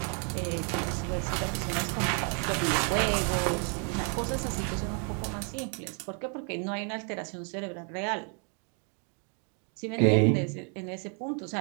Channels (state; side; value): quieter; left; 39.8 dB